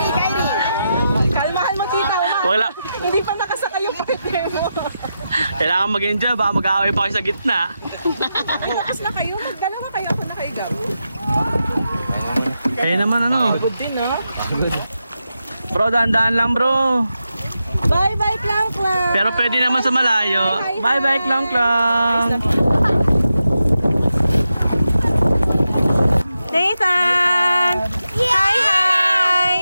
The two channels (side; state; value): both; inverted; correlation -0.88